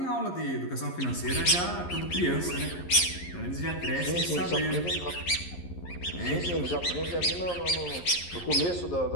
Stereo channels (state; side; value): late; right; 11 ms